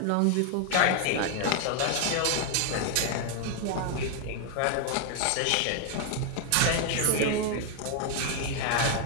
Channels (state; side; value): different; both; correlation 0.01